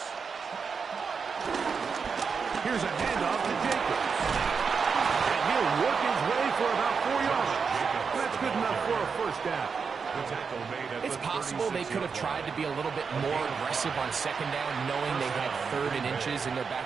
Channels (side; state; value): left; quieter; 5.6 dB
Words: Here's a handoff to Jacobs. And he'll work his way for about 4 yards. That's good enough for a 1st down. It's possible they could have tried to be a little bit more aggressive on 2nd down, knowing they had 3rd and inches in their back